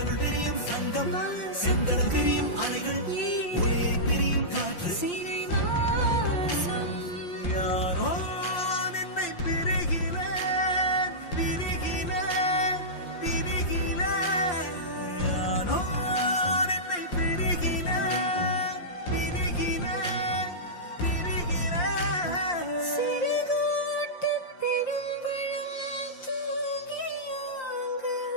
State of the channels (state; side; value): late; right; 5.7 ms